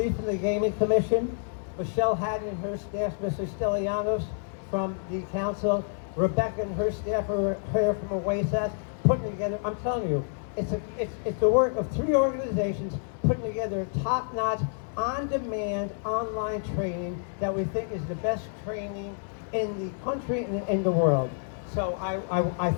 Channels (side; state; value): right; silent; digital silence